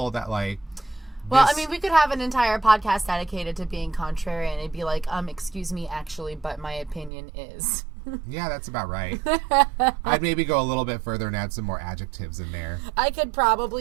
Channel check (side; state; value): left; drops out; at 7.1 s